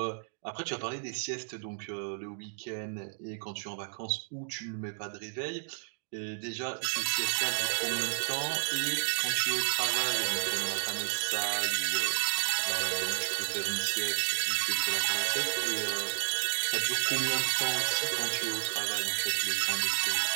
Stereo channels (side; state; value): left; silent; digital silence